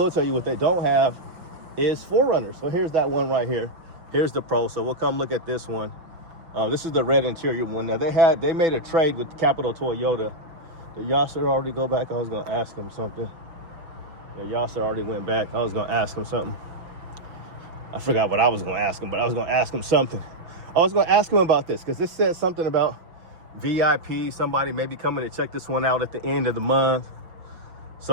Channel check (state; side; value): late; left; 6.0 ms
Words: tell you. What they don't have is 4Runners. So here's that one right here. Here's the Pro. So we'll come look at this one. This is the red interior one. Now they made a trade with Capital Toyota. Did Yasser already go back? I was gonna ask him something. Yeah, Yasser already went back. I was gonna ask him something. I forgot what I was gonna ask him, but I was gonna ask him something. I was gonna ask him about this because this said something about VIP. Somebody maybe coming to check this one out at the end of the month.